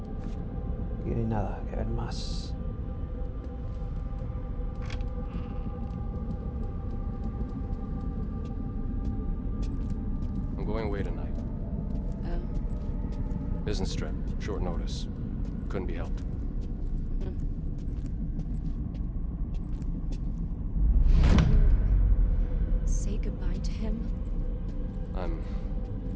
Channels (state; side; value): identical; both; correlation 1.00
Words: Aquí no hay nada que ver más. I'm going away tonight. Oh. Business trip. Short notice. Couldn't be helped. Say goodbye to him? I'm